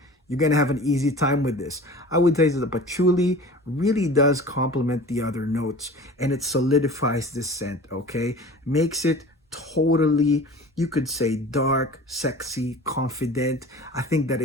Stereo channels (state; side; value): normal; both; correlation 0.40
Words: you're gonna have an easy time with this. I would say that the patchouli really does complement the other notes, and it solidifies this scent, okay? Makes it totally, you could say, dark, sexy, confident. I think that